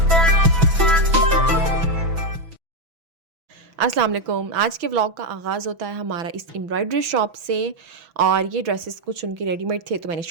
वालेकुम। आज के व्लॉग का आगाज़ होता है हमारा इस एम्ब्रॉयडरी शॉप से। और ये ड्रेसेस कुछ उनके रेडीमेड थे तो मैंने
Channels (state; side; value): late; left; 6.0 ms